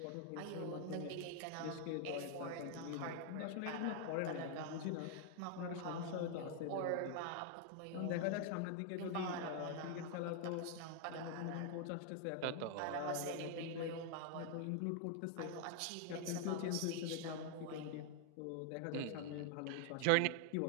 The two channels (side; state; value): both; different; correlation 0.00